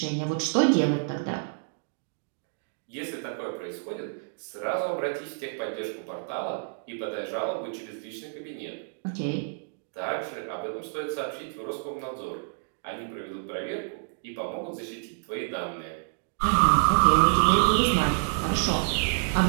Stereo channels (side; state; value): left; silent; digital silence